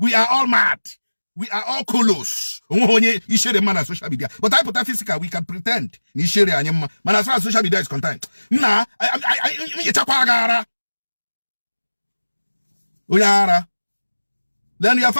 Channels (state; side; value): inverted; both; correlation -1.00